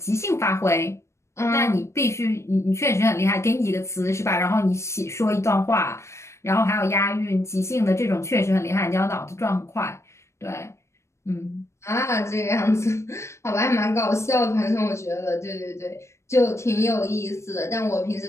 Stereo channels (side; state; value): right; late; 0.13 ms